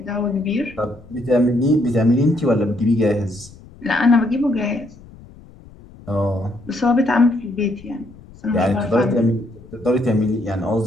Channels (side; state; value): left; noise; rumble, 21 dB below the sound